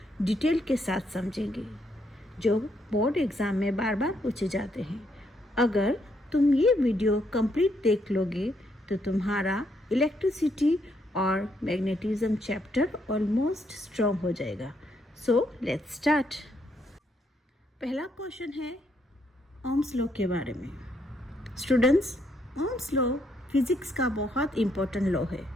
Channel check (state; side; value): normal; both; correlation 0.74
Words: डिटेल के साथ समझेंगे जो बोर्ड एग्जाम में बार बार पूछे जाते हैं। अगर तुम ये वीडियो कंप्लीट देख लोगे तो तुम्हारा इलेक्ट्रिसिटी और मैग्नेटिज्म चैप्टर ऑलमोस्ट स्ट्रॉन्ग हो जाएगा। So let's start. पहला क्वेश्चन है ओम्स लॉ के बारे में। स्टूडेंट्स, ओम्स लॉ फिजिक्स का बहुत इम्पोर्टेंट लॉ है।